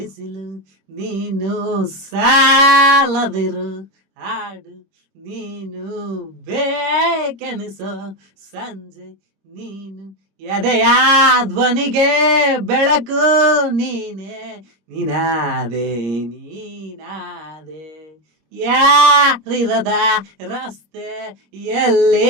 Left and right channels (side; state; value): left; late; 26 ms